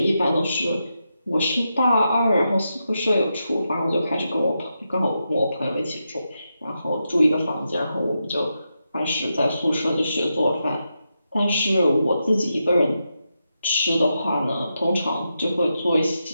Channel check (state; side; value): inverted; both; correlation -0.86